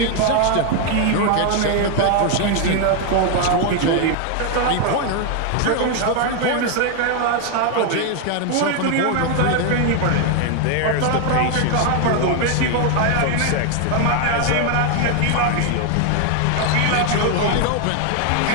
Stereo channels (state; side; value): different; both; correlation 0.01